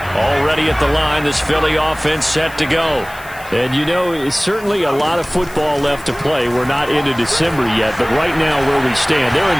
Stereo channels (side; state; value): left; noise; hiss, 20 dB below the sound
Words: Already at the line, this Philly offense set to go. And, you know, it's certainly a lot of football left to play. We're not into December yet, but right now where we stand, they're in